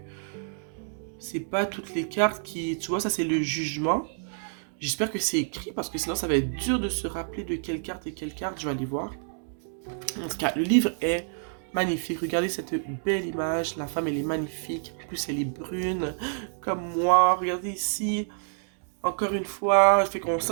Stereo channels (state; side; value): silent; left; digital silence